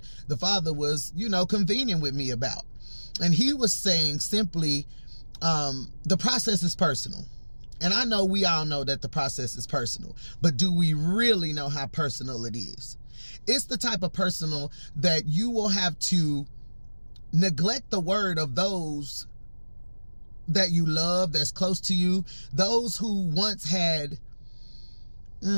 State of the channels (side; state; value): both; inverted; correlation -1.00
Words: the Father was, convening with me about. And he was saying simply, the process is personal. And I know we all know that the process is personal, but do we really know how personal it is? It's the type of personal that you will have to neglect the word of those that you love, that's close to you, those who once had,